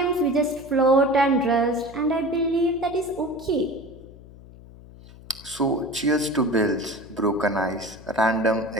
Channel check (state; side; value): noise; left; hum, 20 dB below the sound